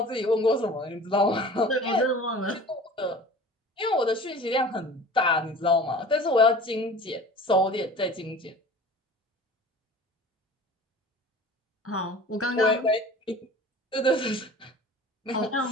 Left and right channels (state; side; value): normal; both; correlation 0.41